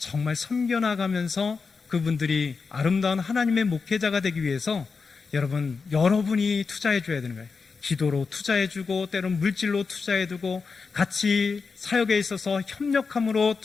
섬겨나가면서 그분들이 아름다운 하나님의 목회자가 되기 위해서 여러분이 투자해 줘야 되는 거예요. 기도로 투자해 주고 때로는 물질로 투자해 두고 같이 사역에 있어서 협력함으로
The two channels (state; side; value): quieter; right; 4.9 dB